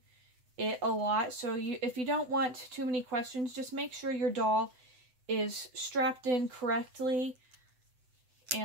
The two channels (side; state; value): left; late; 7.9 ms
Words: it a lot. So if you don't want too many questions, just make sure your doll is strapped in correctly